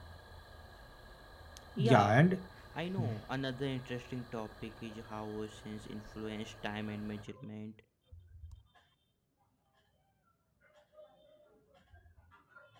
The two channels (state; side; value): identical; both; correlation 1.00